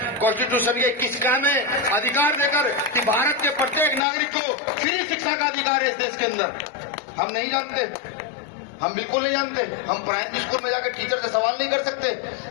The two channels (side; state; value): right; drops out; at 4.0 s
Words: कॉन्स्टिट्यूशन के 21 का में अधिकार देकर कि भारत के प्रत्येक नागरिक को फ्री शिक्षा का अधिकार है इस देश के अंदर। हम नहीं जानते, हम बिल्कुल नहीं जानते। हम प्राइमरी स्कूल में जाकर टीचर से सवाल नहीं कर सकते,